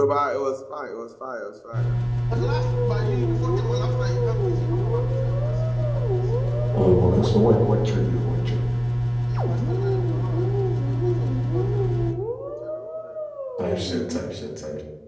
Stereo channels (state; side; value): identical; both; correlation 1.00